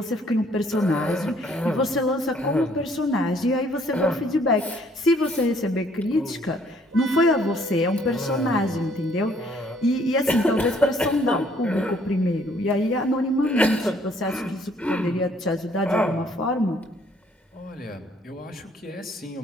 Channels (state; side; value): normal; both; correlation 0.63